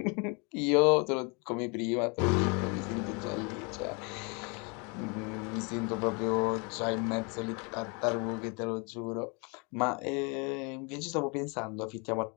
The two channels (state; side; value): quieter; right; 32.3 dB